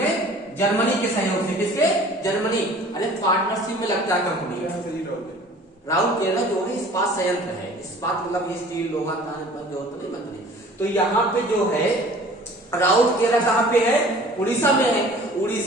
जर्मनी के सहयोग से। किसके? जर्मनी। अरे पार्टनरशिप में लगता है कंपनी। राउरकेला जो है इस्पात संयंत्र है, इस्पात मतलब स्टील, लोहा, जो होता है मंत्री। तो यहाँ पे जो है राउरकेला कहाँ पे है? उड़ीसा में है।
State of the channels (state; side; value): normal; both; correlation 0.48